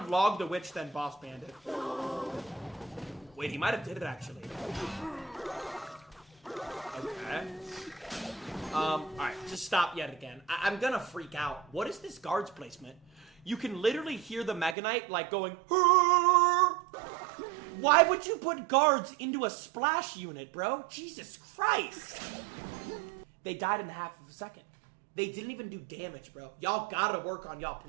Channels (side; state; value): left; drops out; at 14.8 s